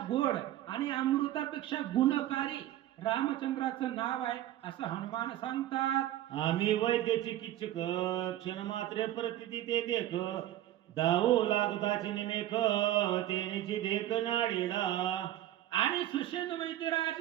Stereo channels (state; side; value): quieter; left; 13.5 dB